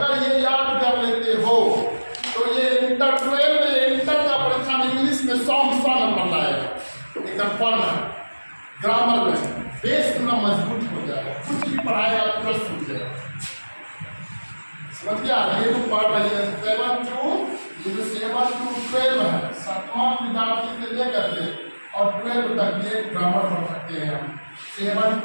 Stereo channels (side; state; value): both; inverted; correlation -1.00